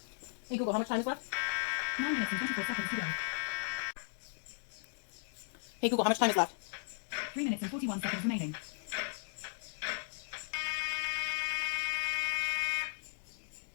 Hey Google, how much time is left? 9 minutes and 24 seconds to go. Hey Google, how much time is left? 3 minutes and 41 seconds remaining.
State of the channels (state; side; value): silent; right; digital silence